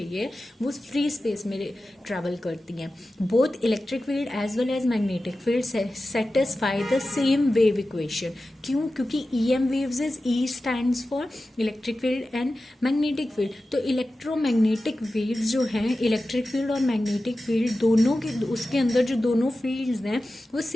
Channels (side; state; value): both; normal; correlation 0.94